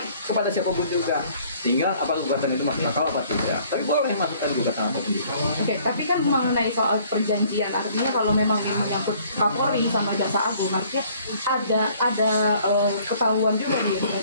kepada siapapun juga. Tinggal apa gugatan itu masuk akal apa tidak. Tapi boleh masukkan gugatan apapun juga. Oke, tapi kan mengenai soal perjanjian, artinya kalau memang ini menyangkut Kapolri sama Jaksa Agung, artinya ada ketahuan juga nih,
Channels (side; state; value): both; inverted; correlation -0.58